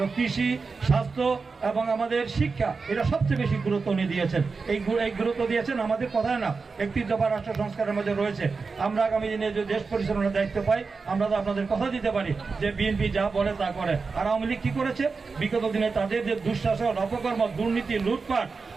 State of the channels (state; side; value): quieter; left; 4.6 dB